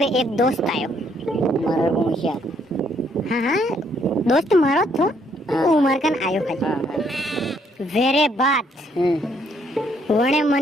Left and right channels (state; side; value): normal; both; correlation 0.69